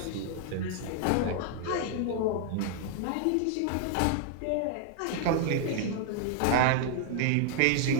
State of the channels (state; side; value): different; both; correlation 0.00